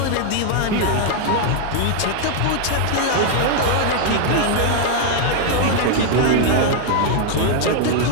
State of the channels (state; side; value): different; both; correlation 0.00